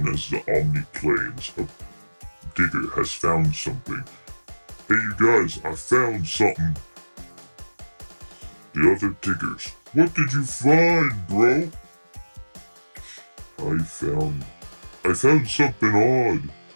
as the Omni Plains, a digger has found something. Hey you guys, I found something. The other diggers, what did you find, bro? I found something odd.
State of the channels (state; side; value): inverted; both; correlation -1.00